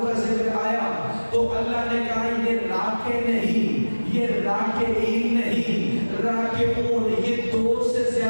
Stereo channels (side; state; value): both; inverted; correlation -1.00